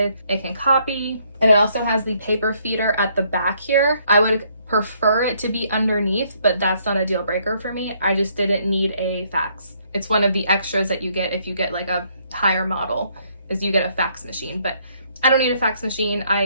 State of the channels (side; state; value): both; inverted; correlation -0.69